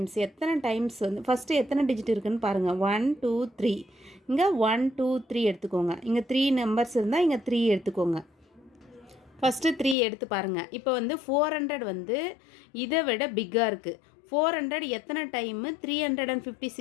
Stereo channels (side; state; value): right; drops out; at 10.0 s